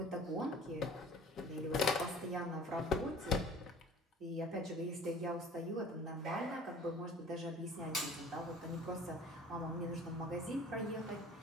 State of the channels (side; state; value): both; normal; correlation 0.48